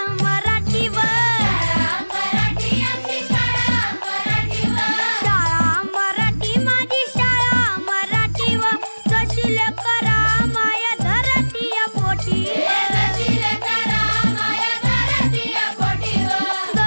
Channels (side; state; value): both; inverted; correlation -1.00